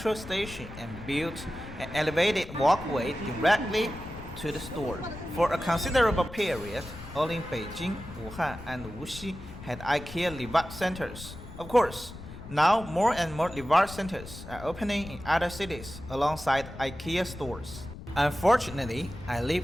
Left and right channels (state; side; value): noise; left; rumble, 14 dB below the sound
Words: station and built an elevated walkway directly to the store. For a considerable period, only Beijing, Wuhan and Wuxi had IKEA Livat centers. Of course, now more and more Livat centers are opening in other cities alongside IKEA stores. Unfortunately, I live